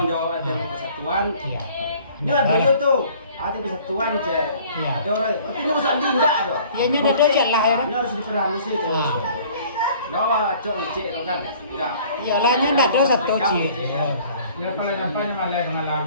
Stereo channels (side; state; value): both; inverted; correlation -0.53